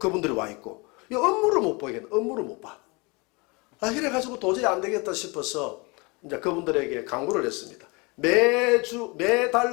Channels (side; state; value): right; quieter; 28.0 dB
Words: 와 있고 이 업무를 못 보겠네. 업무를 못 봐. 이래가지고 도저히 안 되겠다 싶어서 이제 그분들에게 강구를 했습니다. 매달